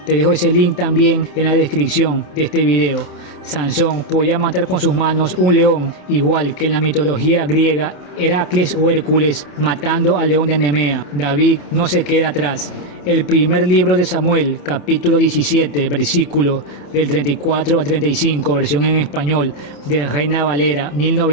Te dejo ese link también en la descripción de este video. Sansón podía matar con sus manos un león, igual que en la mitología griega Heracles o Hércules matando al león de Nemea. David no se queda atrás. El primer libro de Samuel, capítulo 17, versículo del 34 al 35, versión en español, de Reina Valera,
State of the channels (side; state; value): right; late; 27 ms